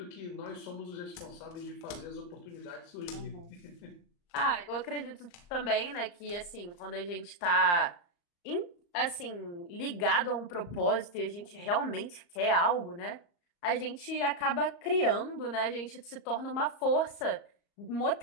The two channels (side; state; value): right; late; 34 ms